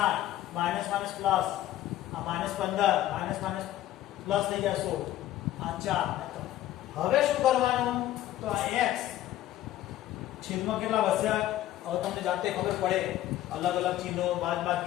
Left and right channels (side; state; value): right; quieter; 13.7 dB